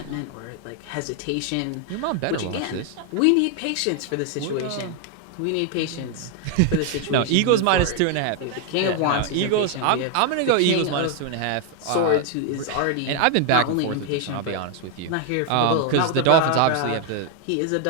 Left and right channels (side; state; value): both; different; correlation 0.01